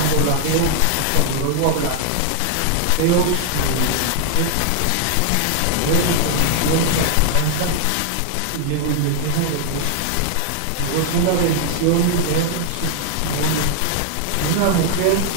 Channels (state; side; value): different; both; correlation 0.00